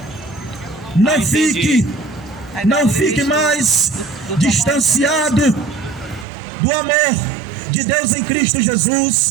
Não fique mais distanciado do amor de Deus em Cristo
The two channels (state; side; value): drops out; left; at 6.2 s